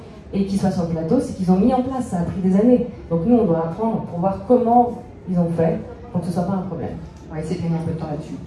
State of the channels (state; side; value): identical; both; correlation 1.00